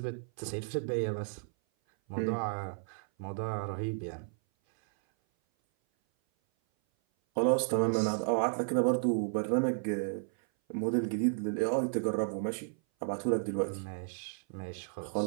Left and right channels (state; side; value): silent; left; 56 dB below the other